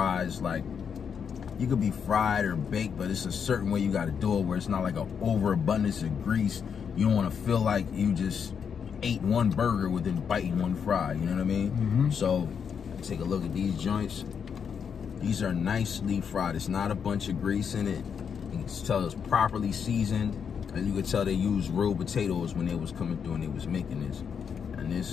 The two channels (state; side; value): quieter; right; 7.0 dB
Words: like. You could be fried or baked, but it's a certain way you got to do it where it's not like an overabundance of grease. You don't want to feel like you just ate one burger within biting one fry. You know what I mean? So take a look at these joints. These are nicely fried. It's not a bunch of grease in it. You can tell it's properly seasoned, and you can tell they used real potatoes when they was coming through and they was making this. And